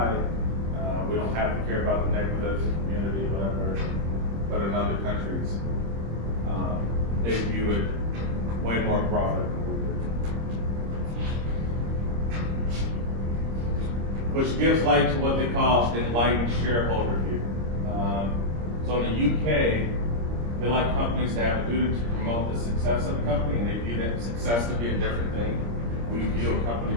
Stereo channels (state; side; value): late; left; 26 ms